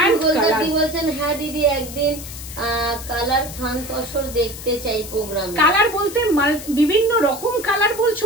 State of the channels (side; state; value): left; noise; hiss, 12 dB below the sound